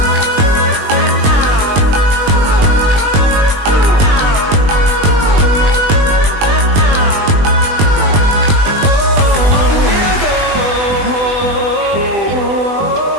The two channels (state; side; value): late; left; 20 ms